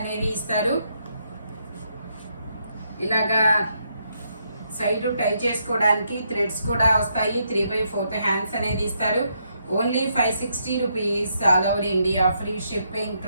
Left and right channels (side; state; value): both; inverted; correlation -0.77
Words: అనేది ఇస్తారు. ఇలాగా సైడ్ టై చేసుకోవడానికి థ్రెడ్స్ కూడా వస్తాయి. 3/4 హ్యాండ్స్ అనేది ఇస్తారు. Only 560 rupees all over India free shipping.